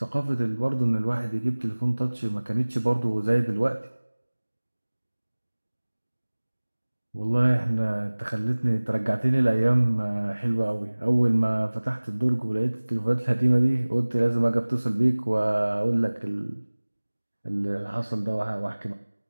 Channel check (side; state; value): both; inverted; correlation -1.00